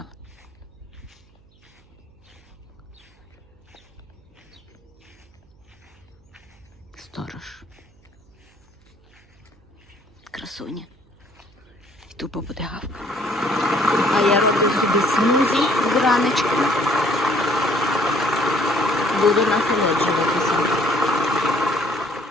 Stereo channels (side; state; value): right; noise; hum, 30 dB below the sound